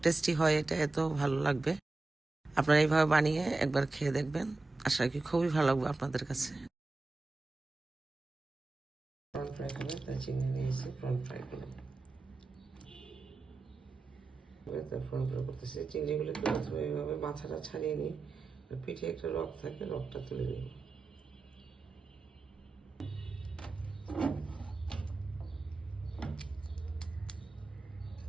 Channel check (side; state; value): left; quieter; 3.4 dB